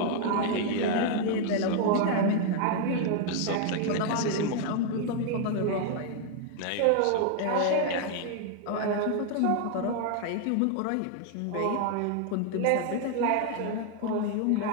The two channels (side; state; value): both; different; correlation 0.00